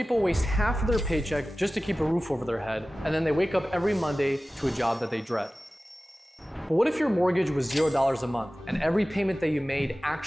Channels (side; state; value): both; normal; correlation 0.96